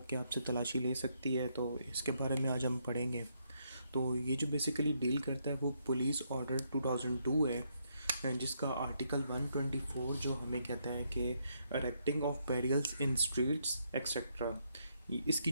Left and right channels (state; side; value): inverted; both; correlation -0.75